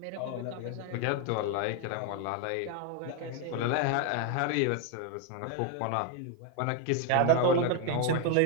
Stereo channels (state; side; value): different; both; correlation 0.01